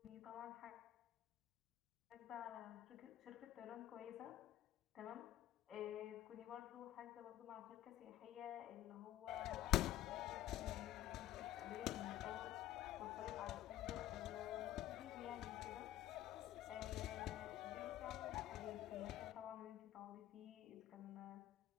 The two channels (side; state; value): right; quieter; 13.3 dB